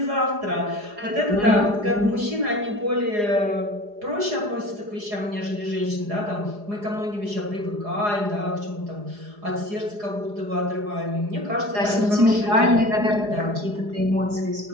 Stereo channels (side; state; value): left; late; 4.9 ms